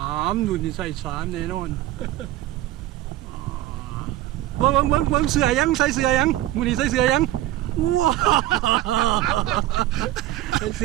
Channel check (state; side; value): quieter; left; 14.7 dB